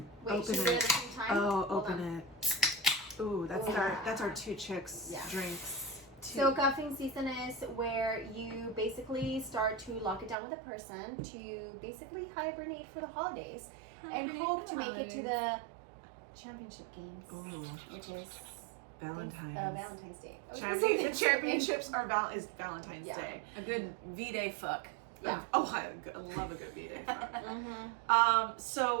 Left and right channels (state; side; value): drops out; left; at 10.4 s